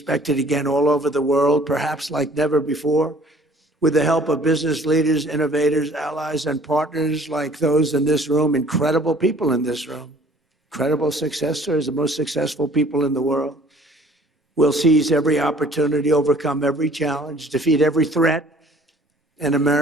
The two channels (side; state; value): both; normal; correlation 0.54